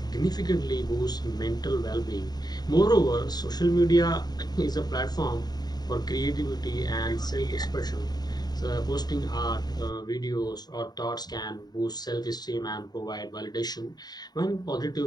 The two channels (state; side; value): late; right; 0.20 ms